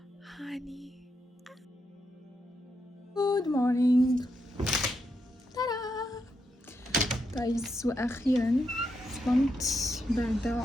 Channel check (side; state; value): both; normal; correlation 0.82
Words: هاني Good morning. ترى جايز، وأخيرا صمت